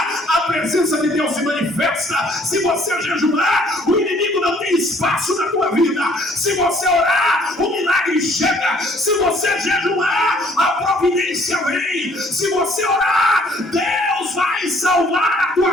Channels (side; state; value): both; normal; correlation 0.60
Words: a presença de Deus se manifesta. Se você jejuar, o inimigo não tem espaço na tua vida. Se você orar, o milagre chega. Se você jejuar, a providência vem. Se você orar, Deus vai salvar a